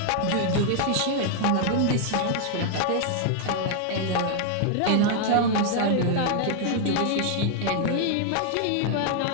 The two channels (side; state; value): both; different; correlation 0.00